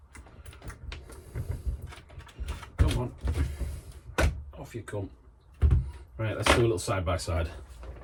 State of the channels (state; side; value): identical; both; correlation 1.00